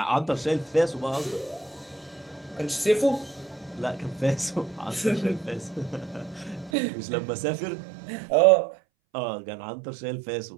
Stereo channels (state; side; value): drops out; left; at 6.7 s